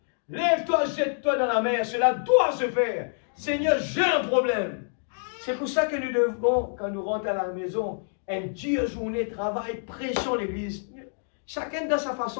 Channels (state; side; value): silent; right; digital silence